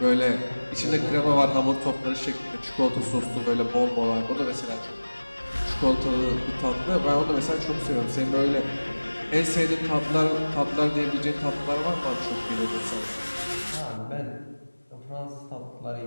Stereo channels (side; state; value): both; inverted; correlation -1.00